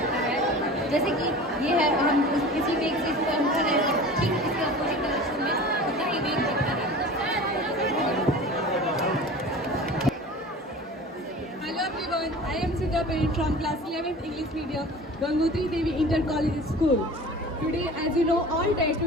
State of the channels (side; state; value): both; normal; correlation 0.39